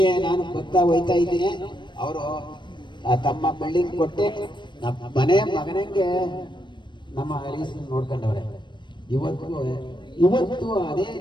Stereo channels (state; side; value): late; right; 0.22 ms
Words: ನಾನು ಹೋಯ್ತಾ ಇದ್ದೀನಿ. ಅವರು ತಮ್ಮ ಬಿಲ್ಡಿಂಗ್ ಕೊಟ್ಟೆ ನಮ್ಮ ಮಗನಿಗೆ ನಮ್ಮ ಹರೀಶ್ ನೋಡ್ಕೊಂಡವ್ರೆ. ಇವತ್ತು ಅದೇ